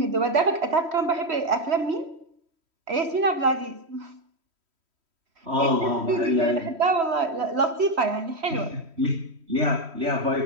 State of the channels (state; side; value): late; left; 3.1 ms